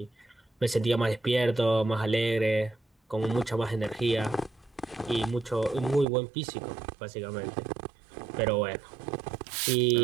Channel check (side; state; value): left; drops out; at 6.1 s